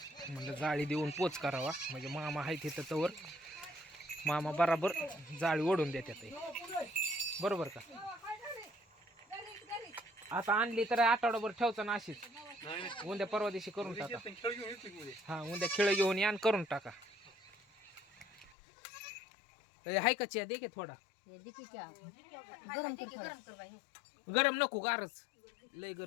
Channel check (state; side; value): drops out; right; at 18.6 s